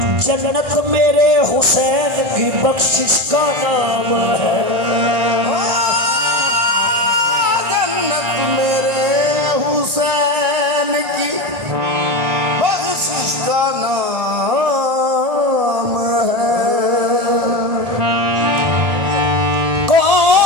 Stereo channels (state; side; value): late; left; 1.6 ms